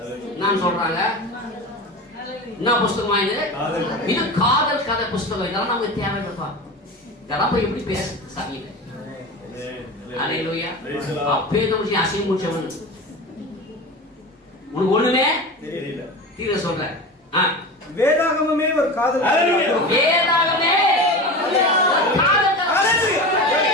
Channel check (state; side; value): normal; both; correlation 0.29